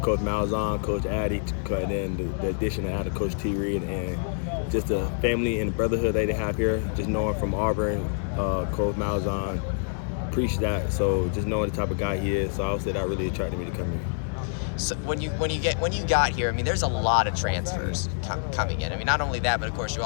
Coach Malzahn, Coach Addy, and then the addition of Coach T. Reed, and just the family and the brotherhood they have here. Just knowing from Auburn, Coach Malzahn preached that. So just knowing the type of guy he is, so I would say that really attracted me to come here. So when you got here, I mean, there's a lot of transfers coming in. I mean, not only that, but of course you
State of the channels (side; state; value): right; silent; digital silence